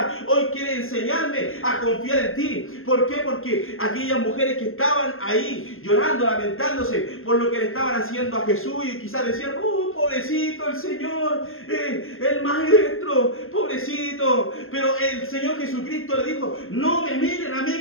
hoy quiere enseñarme a confiar en ti. ¿Por qué? Porque aquellas mujeres que estaban ahí llorando, lamentándose por lo que le estaban haciendo a Jesús, y quizás decían: pobrecito el Señor, el maestro, pobrecito. Pero el Señor Jesucristo le dijo: no me miren a mí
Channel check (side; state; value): right; late; 0.60 ms